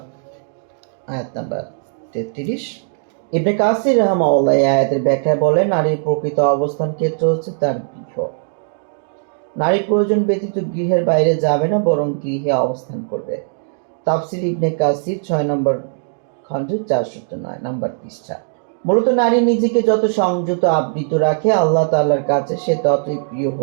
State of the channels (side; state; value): left; silent; digital silence